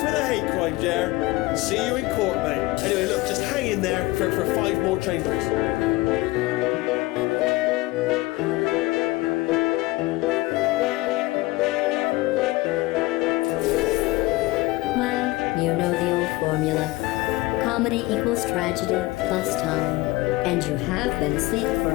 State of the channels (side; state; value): right; quieter; 20.6 dB